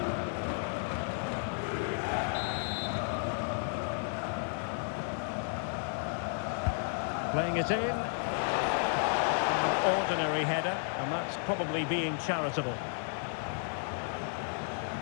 Playing it in. An ordinary header, and that's probably being charitable.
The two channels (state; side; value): silent; right; 56 dB below the other